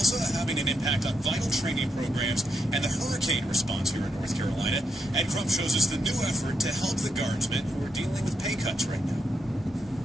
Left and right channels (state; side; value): normal; both; correlation 0.81